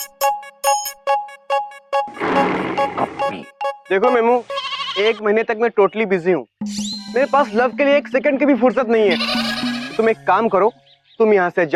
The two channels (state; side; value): identical; both; correlation 1.00